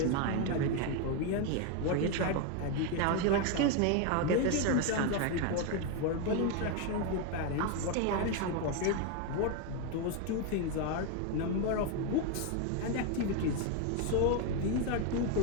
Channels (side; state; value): both; different; correlation 0.01